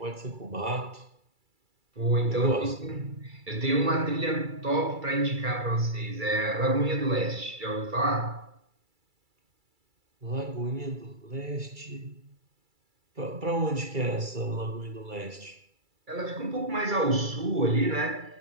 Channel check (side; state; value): left; late; 2.3 ms